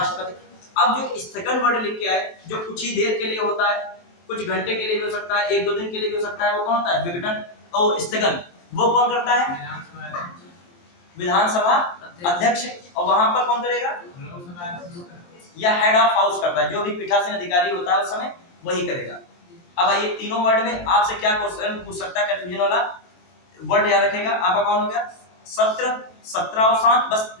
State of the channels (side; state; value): right; late; 23 ms